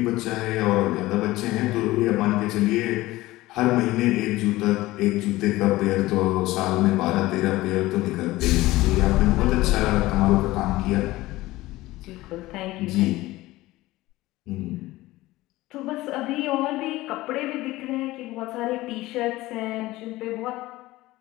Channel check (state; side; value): quieter; right; 18.1 dB